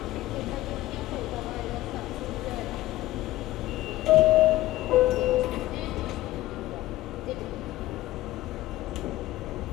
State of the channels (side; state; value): right; quieter; 16.5 dB